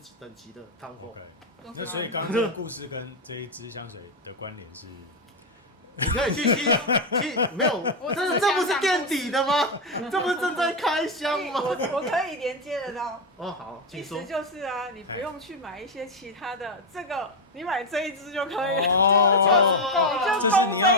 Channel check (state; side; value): normal; both; correlation 0.06